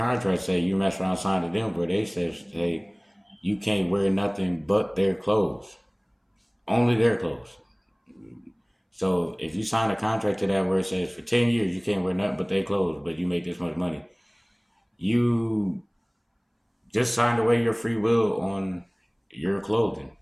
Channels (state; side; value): identical; both; correlation 1.00